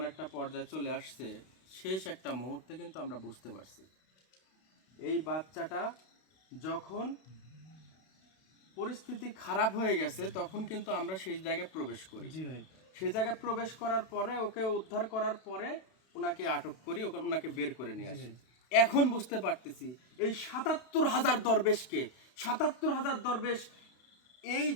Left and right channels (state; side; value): late; right; 32 ms